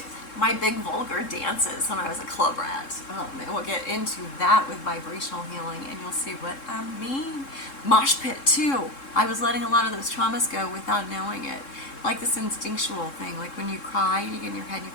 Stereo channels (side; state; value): right; late; 3.7 ms